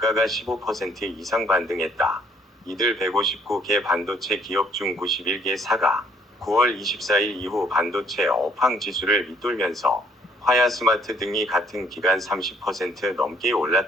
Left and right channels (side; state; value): both; normal; correlation 0.64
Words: 15% 이상 반등했다. 이들 159개 반도체 기업 중 91개사가 9월 24일 이후 반도체 업황 지수를 밑돌면서 화야스마트 등이 같은 기간 30% 넘게